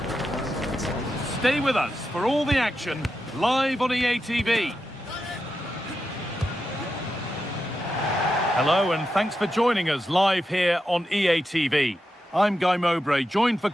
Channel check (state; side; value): normal; both; correlation 0.88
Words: Stay with us for all the action, live on EA TV. Hello and thanks for joining us live here on EA TV. I'm Guy Mowbray, joined for